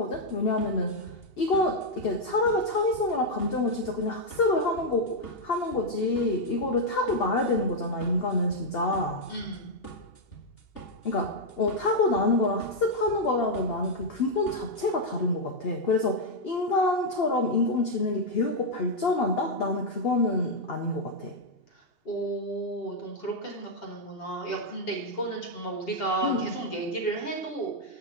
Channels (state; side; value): late; right; 2.8 ms